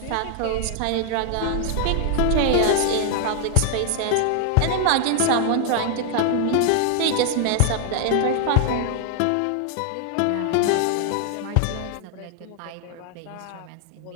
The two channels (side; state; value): both; different; correlation 0.00